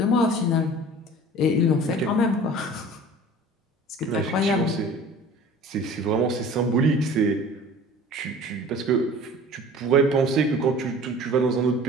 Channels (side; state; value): both; normal; correlation 0.43